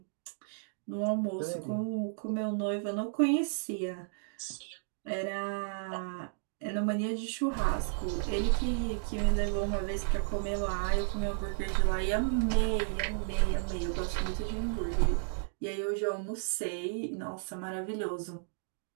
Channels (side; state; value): left; silent; digital silence